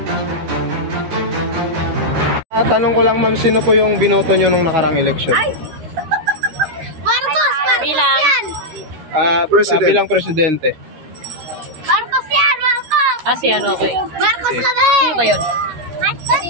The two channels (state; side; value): late; left; 13 ms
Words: Tanong ko lang ma'am, sino po yung binoto nyo nung nakarang election? Bilang? President. Bilang presidente. Marcos yan! Marcos! Si ano, okay. Marcos kami! Sino ba yun?